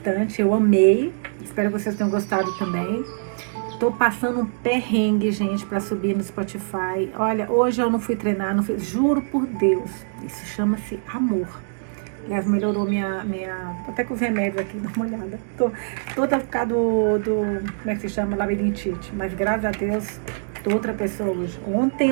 eu amei, espero que vocês tenham gostado também. Tô passando um perrengue, gente, para subir no Spotify. Olha, hoje eu não fui treinar, juro por Deus, isso chama-se amor. Aliás, melhorou até com os remédios aqui, dá uma olhada. Tô toda por causa como é que se chama, labirintite. Mas graças a Deus, tô outra pessoa hoje. Ontem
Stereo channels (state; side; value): silent; left; digital silence